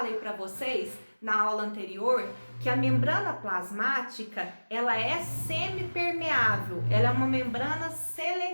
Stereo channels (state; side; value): inverted; both; correlation -1.00